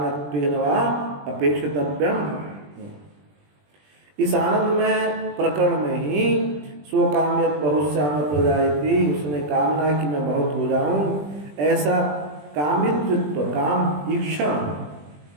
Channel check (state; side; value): late; left; 20 ms